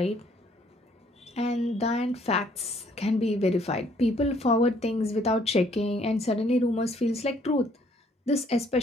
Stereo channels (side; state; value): both; normal; correlation 0.64